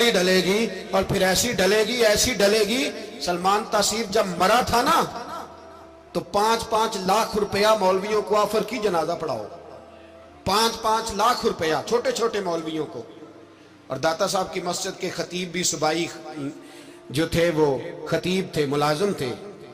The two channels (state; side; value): identical; both; correlation 1.00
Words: ڈلے گی، اور پھر ایسی ڈلے گی. سلمان تاثیر جب مرا تھا نا، تو 5-5 لاکھ روپیہ مولویوں کو آفر کی جنازہ پڑھاؤ. 5-5 لاکھ روپیہ چھوٹے چھوٹے مولویوں کو. اور داتا صاحب کی مسجد کے خطیب بھی صوبائی جو تھے، وہ خطیب تھے، ملازم تھے.